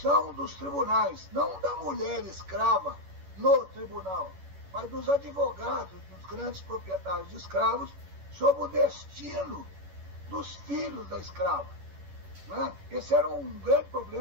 dos tribunais, não da mulher escrava no tribunal, mas dos advogados, dos grandes proprietários de escravos, sobre o destino dos filhos da escrava, né? Esse era um grande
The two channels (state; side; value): late; left; 11 ms